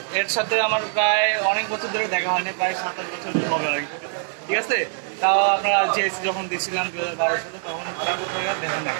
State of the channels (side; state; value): left; silent; digital silence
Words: এর সাথে আমার প্রায় অনেক বছর ধরে দেখা হয়নি, প্রায় 7-8 বছর হবে আর কি, ঠিক আছে? তাও আপনারা জিএসসি যখন দিয়েছিলাম 2012 সালে, তখন তারপর থেকে দেখা নাই।